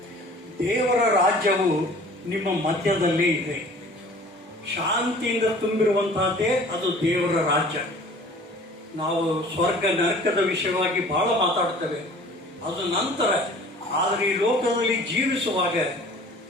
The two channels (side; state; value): both; normal; correlation 0.48